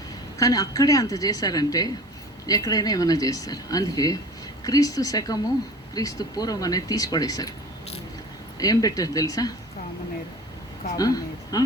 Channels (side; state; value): both; normal; correlation 0.41